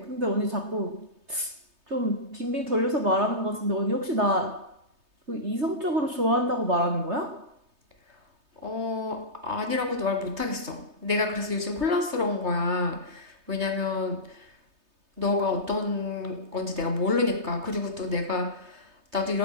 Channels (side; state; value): left; late; 3.2 ms